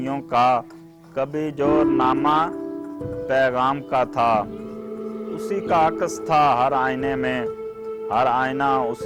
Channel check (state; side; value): identical; both; correlation 1.00